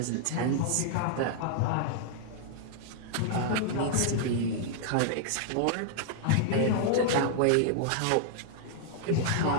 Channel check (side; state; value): both; different; correlation -0.01